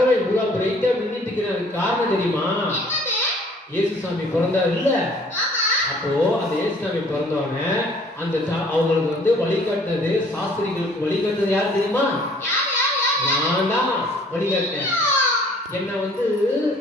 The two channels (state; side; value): normal; both; correlation 0.56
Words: இவ்வளவு பிரைட்டா மின்னிட்டு இருக்கிறது காரணம் தெரியுமா? இயேசுசாமி பிறந்தார் இல்ல, அப்போ அந்த இயேசுசாமி பிறந்தவங்க அந்த அவங்களுக்கு வந்து வழிகாட்டினது, சாஸ்திரிகளுக்கு வழிகாட்டினது யாரு தெரியுமா? நான் தான் வழிகாட்டினேன். என்ன வந்து